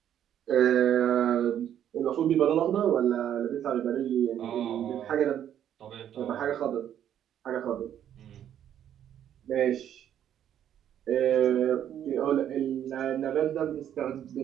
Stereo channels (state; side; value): quieter; left; 10.2 dB